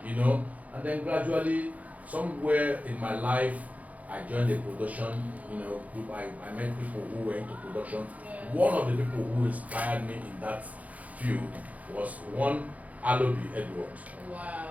And then gradually, somewhere in my life, I joined a production, group. I met people who were into production. Yes. One of the people who inspired me in that field was one Alobi Edward. Wow.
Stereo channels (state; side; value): late; left; 0.072 ms